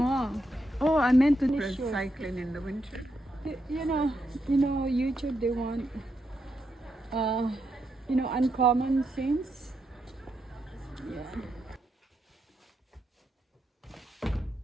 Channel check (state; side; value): normal; both; correlation 0.82